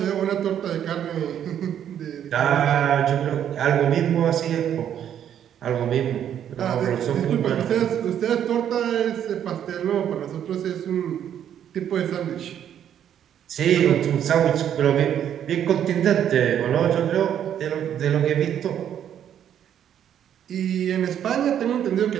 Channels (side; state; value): left; quieter; 9.7 dB